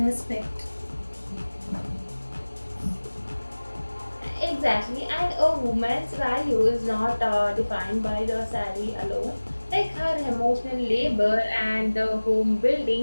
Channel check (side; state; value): both; inverted; correlation -1.00